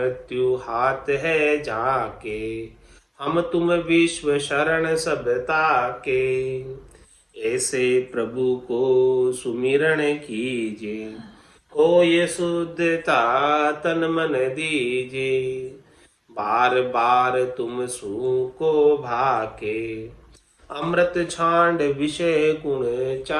हाथ है जाके, हम तुम विश्व शरण सब ताके, ऐसे प्रभु को सुमिरन कीजे, हो ये शुद्धता तन मन दीजे, बार बार तुम सू को भाके, अमृत छांड विषय गुण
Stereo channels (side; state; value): both; identical; correlation 1.00